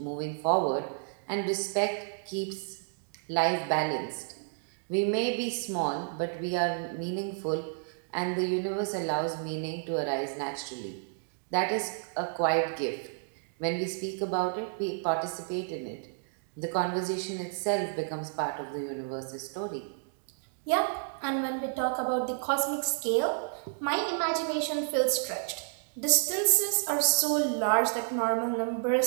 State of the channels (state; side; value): silent; left; digital silence